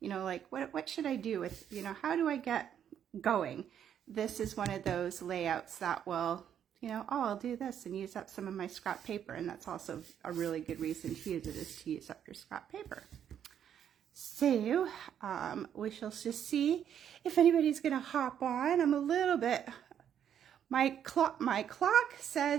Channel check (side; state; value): left; quieter; 9.2 dB